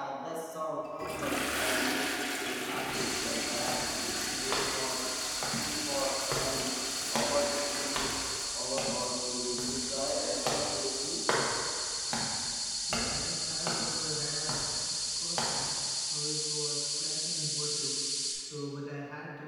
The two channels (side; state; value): both; identical; correlation 1.00